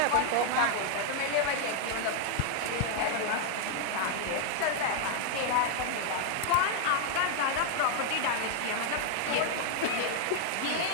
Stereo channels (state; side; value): different; both; correlation 0.00